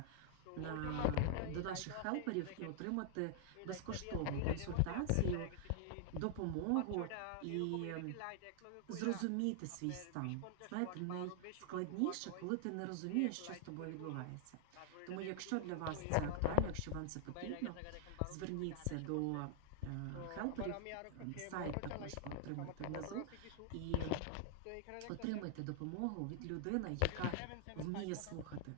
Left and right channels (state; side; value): different; both; correlation -0.01